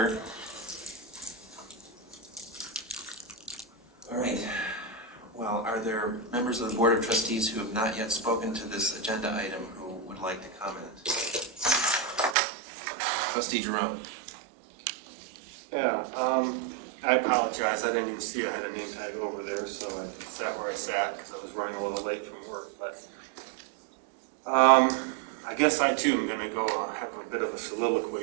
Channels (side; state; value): left; drops out; at 12.4 s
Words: All right. Well, are there members of the Board of Trustees who have not yet spoken to this agenda item who would like to comment? Trustee Jerome. Yeah, I apologize. I didn't even see I had a name tag over there, so I sat where I sat because I was running a little late from work. But I guess I too am going to go have a bit of a